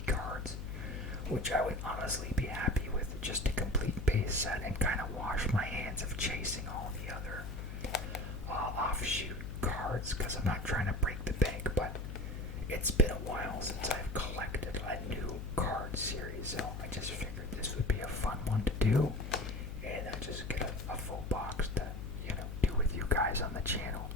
cards, which I would honestly be happy with, just a complete base set, and kind of wash my hands of chasing all the other offshoot cards, because I'm not trying to break the bank. But it's been a while since I've collected a new card series, so I just figured this would be a fun one to do, and just get a full box to, do with you guys on the channel,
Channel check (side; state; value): left; noise; hum, 7 dB below the sound